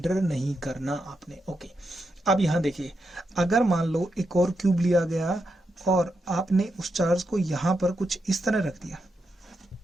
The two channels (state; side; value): normal; both; correlation 0.84